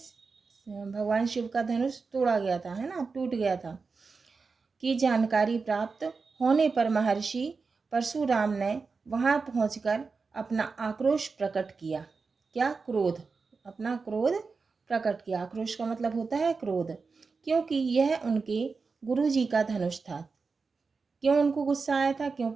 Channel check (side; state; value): left; quieter; 4.6 dB